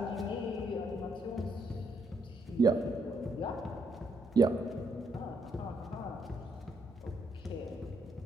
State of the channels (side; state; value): both; normal; correlation 0.75